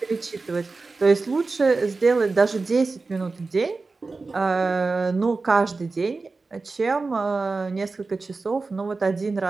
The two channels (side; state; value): left; quieter; 3.9 dB